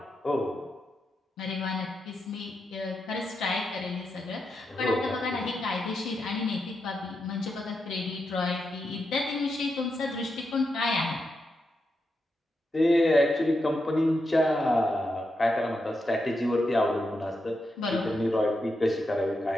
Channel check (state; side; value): normal; both; correlation 0.86